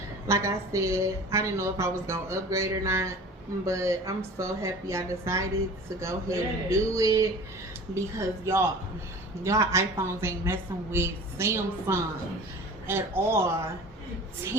Like I said, I didn't know if I was gonna upgrade or not, but I'm so happy I decided to go ahead and do it, because y'all iPhones ain't messing with Samsung at all.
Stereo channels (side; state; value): both; normal; correlation 0.40